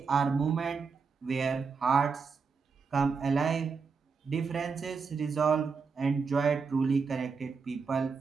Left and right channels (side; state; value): left; quieter; 5.2 dB